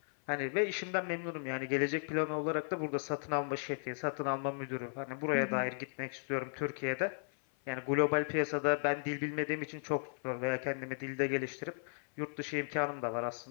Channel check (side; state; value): right; silent; 54 dB below the other